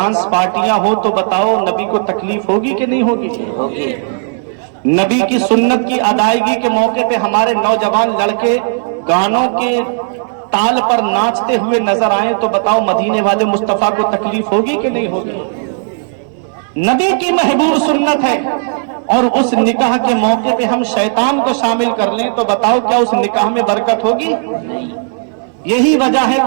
پارٹیاں ہو تو بتاؤ نبی کو تکلیف ہوگی کہ نہیں ہوگی؟ ہوگی. نبی کی سنت کی ادائیگی کے موقع پہ ہمارے نوجوان لڑکے گانوں کے تال پر ناچتے ہوئے نظر آئیں تو بتاؤ مدینے والے مصطفیٰ کو تکلیف ہوگی کہ نہیں ہوگی؟ نبی کی محبوب سنت ہے. اور اس نکاح کے موقع پہ ہم شیطان کو شامل کر لیں تو بتاؤ کیا اس نکاح میں برکت ہوگی؟ یہی وجہ ہے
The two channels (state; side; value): silent; left; digital silence